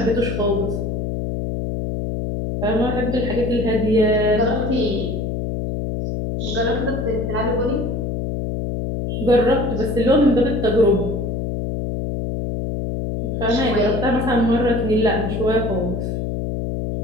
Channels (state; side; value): noise; left; hum, 2 dB below the sound